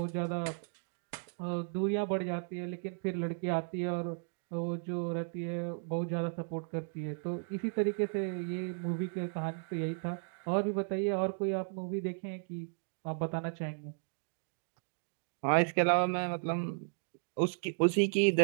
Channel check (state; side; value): silent; left; digital silence